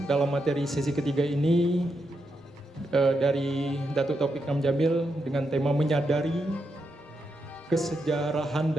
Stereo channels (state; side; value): normal; both; correlation 0.83